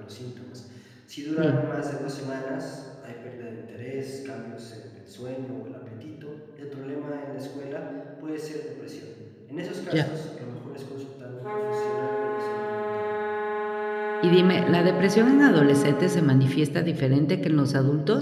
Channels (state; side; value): identical; both; correlation 1.00